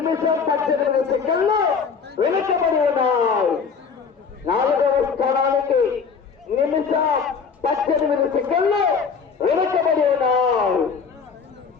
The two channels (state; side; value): quieter; right; 5.8 dB